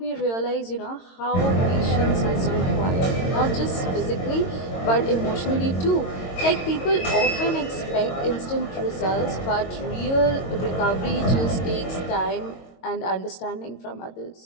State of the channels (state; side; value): late; right; 22 ms